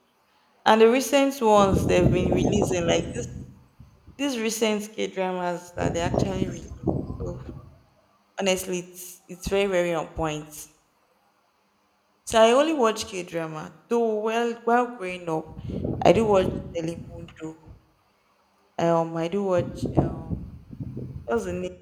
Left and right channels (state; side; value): identical; both; correlation 1.00